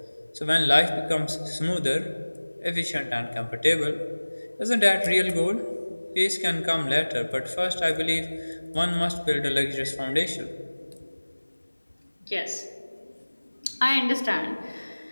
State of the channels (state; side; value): inverted; both; correlation -1.00